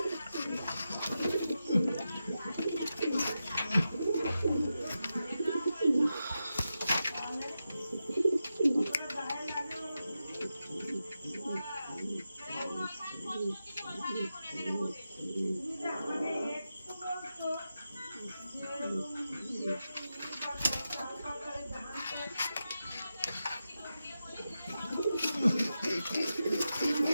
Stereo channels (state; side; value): inverted; both; correlation -0.90